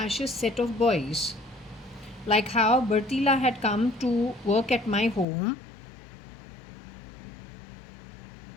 set of boys? Like how Bertila had come to work at my home.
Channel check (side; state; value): right; drops out; at 5.2 s